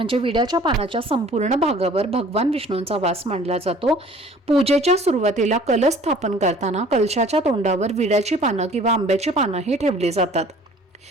विड्याच्या पानाच्या संपूर्ण भागावर भगवान विष्णूंचा वास मानला जातो. पूजेच्या सुरुवातीला कलश स्थापन करताना कलशाच्या तोंडावर विड्याची पानं किंवा आंब्याची पानं ही ठेवली जातात.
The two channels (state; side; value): normal; both; correlation 0.51